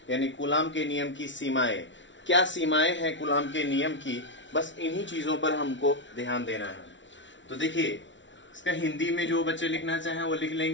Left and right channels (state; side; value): late; right; 0.55 ms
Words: यानी कूलाम के नियम की सीमाएं। क्या सीमाएं हैं कूलाम के नियम की, बस इन्हीं चीज़ों पर हमको ध्यान देना है। तो देखिए, इसका हिंदी में जो बच्चे लिखना चाहें वो लिख